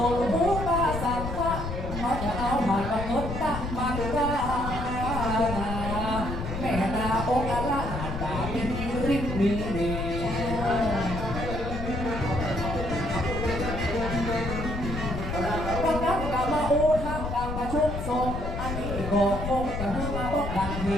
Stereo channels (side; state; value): left; noise; rumble, 5 dB below the sound